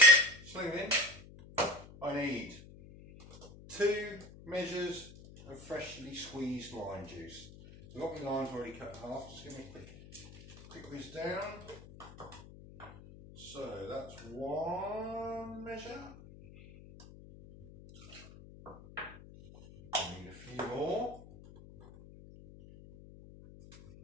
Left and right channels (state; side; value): noise; left; hum, 18 dB below the sound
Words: sling it in. I need 2 measures of freshly squeezed lime juice. So I've got my limes already cut in half, just give me a quick whiz down. So that's 1 measure. I need a few more.